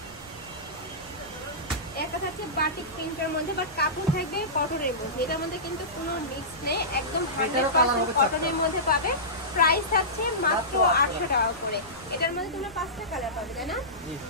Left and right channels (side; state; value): right; noise; rumble, 22 dB below the sound